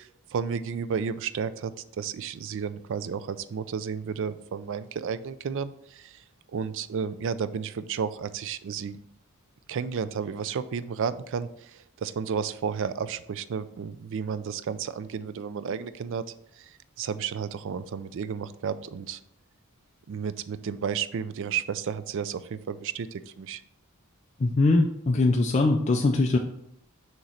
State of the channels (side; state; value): both; normal; correlation 0.41